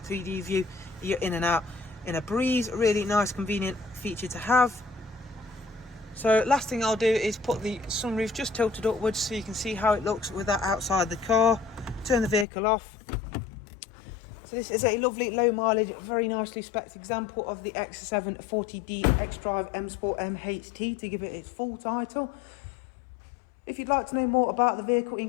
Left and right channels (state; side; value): drops out; right; at 12.5 s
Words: 3D view, you're in and out in a breeze. Really nice, convenient feature to have. So last thing I'll do is put the sunroof just tilted upwards so you can see how it looks with that outside the car. Turn the vehicle off. So this is a lovely low mileage, very nicely spec'd example of the X7 40D XDRIVE M Sport MHT, to give it its full title. If you'd like to know more about the vehicle,